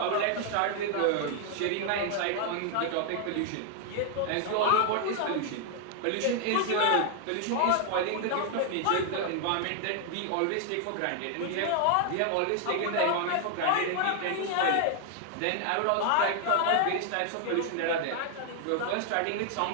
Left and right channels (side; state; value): both; different; correlation 0.00